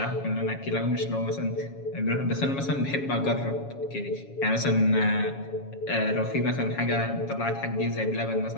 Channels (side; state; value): right; late; 7.2 ms